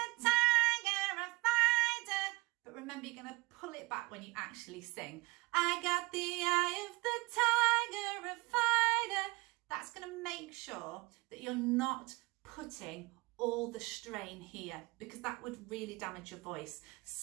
tiger, a fighter. But remember, you're going to pull it back when you actually sing. I got the eye of the tiger, a fighter. That's going to make sure that you're not putting all the strain here, because that would really damage your voice.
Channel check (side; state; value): left; quieter; 23.6 dB